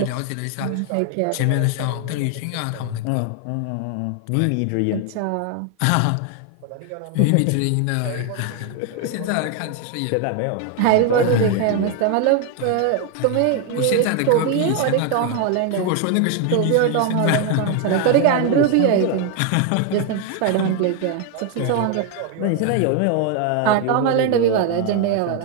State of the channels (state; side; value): different; both; correlation 0.01